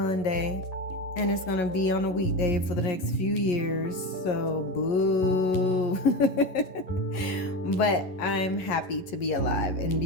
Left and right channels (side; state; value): right; late; 11 ms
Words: and it's going to be on a weekday for the next few years. So, boo. But I'm happy to be alive and